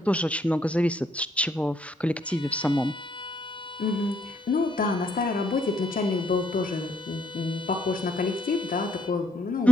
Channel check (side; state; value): both; normal; correlation 0.71